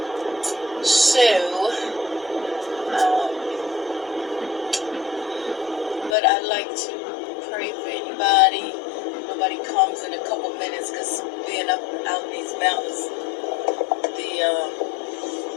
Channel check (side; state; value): right; drops out; at 6.2 s